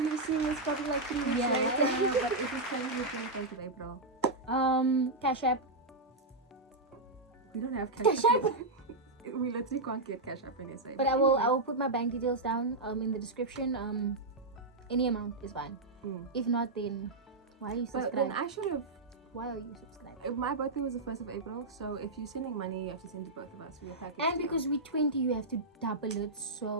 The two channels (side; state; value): left; quieter; 3.0 dB